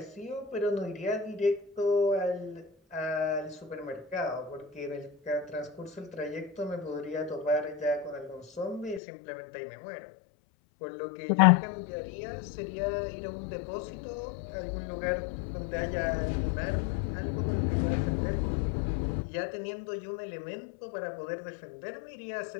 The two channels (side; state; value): right; drops out; at 9.0 s